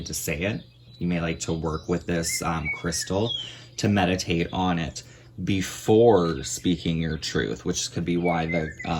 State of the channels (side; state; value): both; identical; correlation 1.00